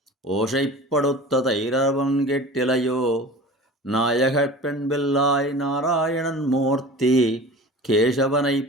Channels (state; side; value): normal; both; correlation 0.38